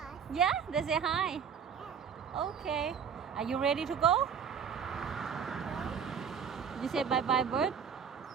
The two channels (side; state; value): left; quieter; 7.2 dB